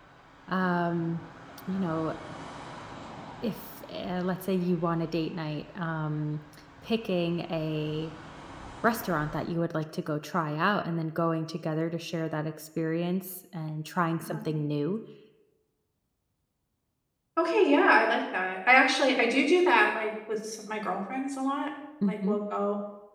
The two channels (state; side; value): identical; both; correlation 1.00